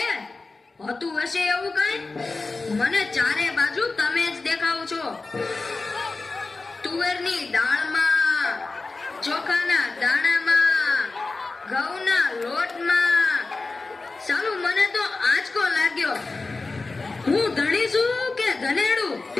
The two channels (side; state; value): right; quieter; 3.7 dB